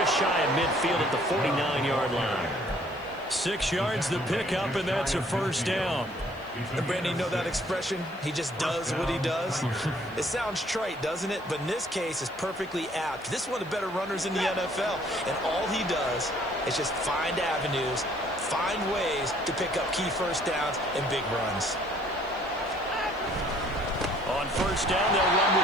shy of midfield at the 49-yard line. 6 yards the pickup, and that's a 1st down. And Brandon, you know that expression? He just does what he does. It sounds trite, doesn't it? But in this case, it's perfectly apt. This is one of the better runners in the NFL. And all he does is just find avenues, find ways to pick up key 1st downs and big runs. On 1st down, they'll run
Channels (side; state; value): left; noise; hiss, 28 dB below the sound